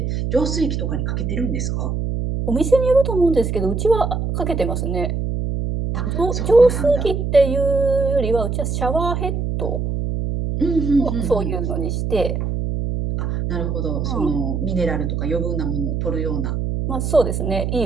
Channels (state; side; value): noise; right; hum, 1 dB below the sound